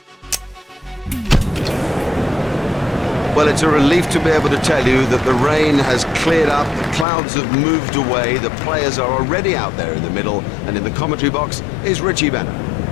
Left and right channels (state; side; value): drops out; right; at 7.1 s